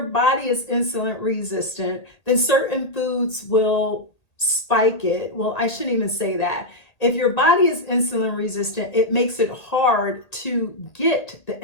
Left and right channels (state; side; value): late; right; 1.8 ms